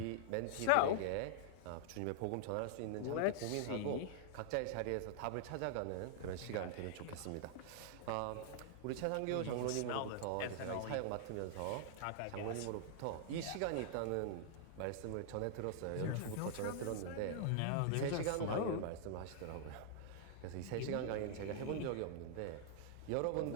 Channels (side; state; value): both; different; correlation -0.01